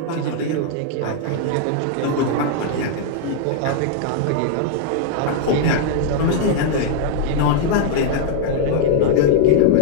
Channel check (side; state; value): both; different; correlation -0.01